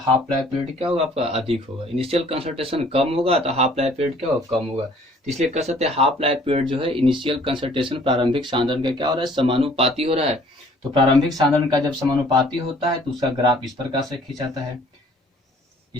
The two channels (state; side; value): normal; both; correlation 0.56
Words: लाइफ पीरियड क्या होगा आपका, अधिक होगा। इनिशियल कंसंट्रेशन कम होगा तो हाफ लाइफ पीरियड क्या होगा, कम होगा। तो इसलिए कह सकते हैं हाफ लाइफ पीरियड जो है इनिशियल कंसंट्रेशन प्रारंभिक सांद्रण का क्या हो रहा है, समानुपाती हो रहा है। तो प्रारंभिक सांद्रण का जब समानुपाती होता है तो उसका ग्राफ इस प्रकार से खींचाता है,